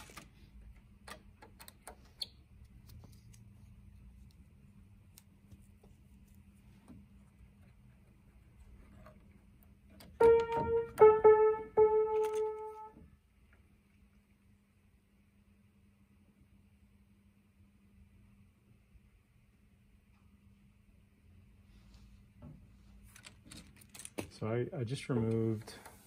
So I just removed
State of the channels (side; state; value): both; identical; correlation 1.00